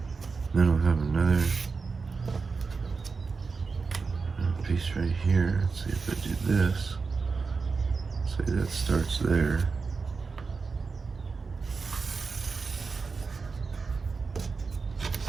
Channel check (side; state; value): left; quieter; 4.7 dB